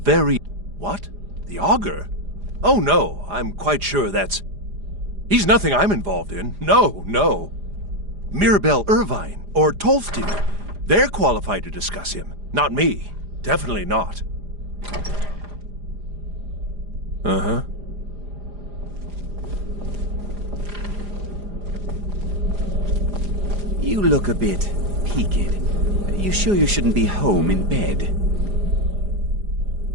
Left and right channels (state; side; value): late; left; 4.9 ms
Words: very... What? The Augur? Oh no, I'm quite sure that's... He's nothing I'm involved in. No. Mirabelle Irvine or Tolfdir. They're qualified to discuss him. Not me. Definitely not. Uh-huh. You look a bit peaked. You sure you shouldn't be home in bed?